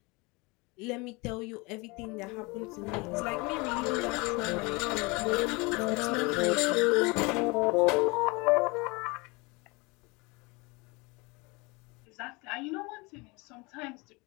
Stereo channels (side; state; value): right; quieter; 26.6 dB